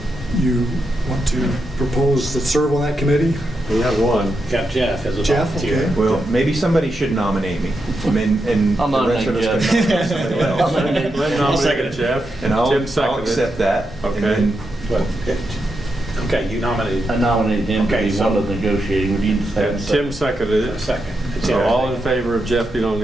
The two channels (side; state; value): both; normal; correlation 0.85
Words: to propose that serve on that committee? We have one. Got Jeff as a Jeff, volunteer. okay. Well, maybe somebody should nominate me. I mean, and I'll the rest of nominate us can nominate somebody else. Glenn nominated Jeff. And I'll Tim seconded. accept that. And Okay. then But, okay, you nominated I nominated him to Okay, be so- one of the negotiating. Would you just have And a Tim seconded a it. second. So all in favor of Jeff being on